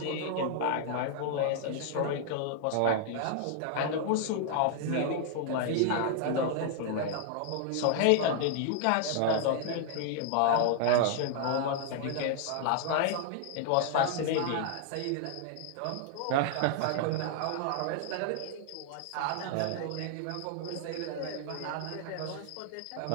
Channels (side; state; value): both; different; correlation 0.00